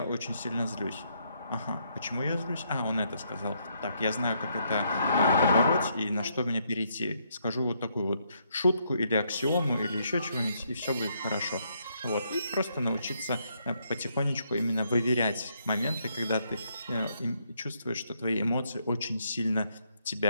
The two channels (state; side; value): inverted; both; correlation -0.74